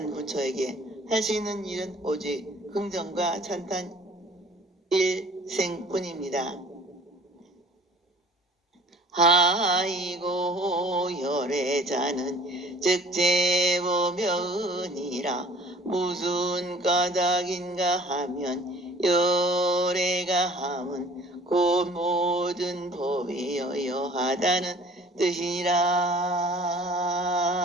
부처에게 할 수 있는 일은 오직 긍정과 찬탄 일생뿐입니다. 하이고 열애자는 즉제보면이라 무슨 까닭인가 하면 열애가 함은 곧 모든 법이 여여하다는 뜻이니라.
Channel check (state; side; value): normal; both; correlation 0.50